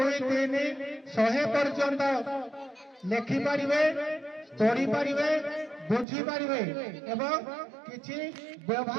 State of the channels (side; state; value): left; drops out; at 6.1 s